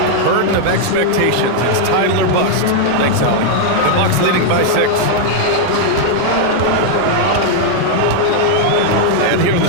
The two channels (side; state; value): both; different; correlation 0.00